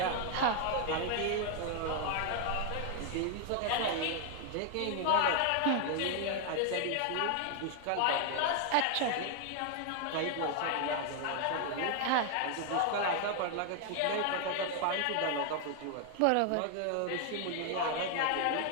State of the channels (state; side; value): different; both; correlation 0.00